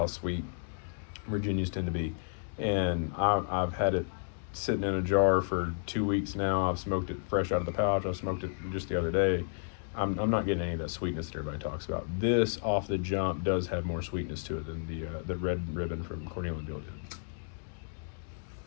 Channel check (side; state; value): right; silent; digital silence